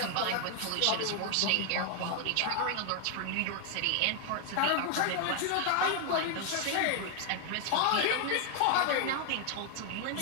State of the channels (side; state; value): both; different; correlation 0.00